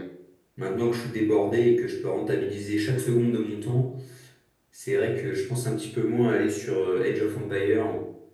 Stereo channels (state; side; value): identical; both; correlation 1.00